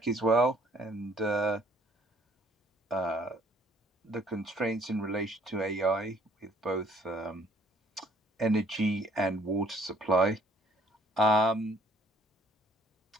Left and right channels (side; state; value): both; normal; correlation 0.62